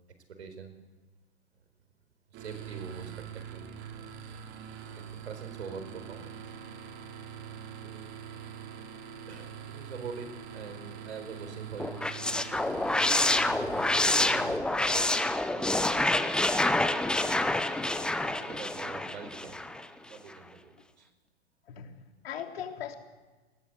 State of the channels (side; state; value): both; normal; correlation 0.60